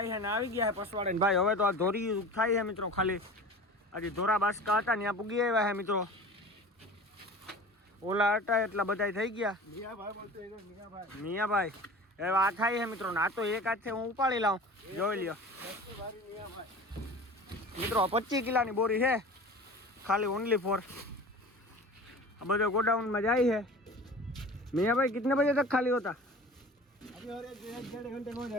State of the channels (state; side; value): normal; both; correlation 0.38